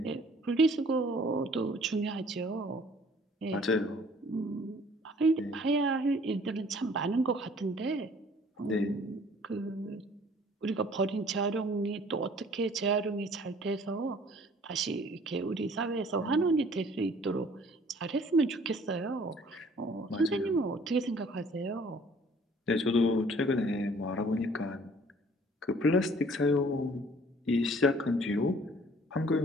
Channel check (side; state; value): both; normal; correlation 0.55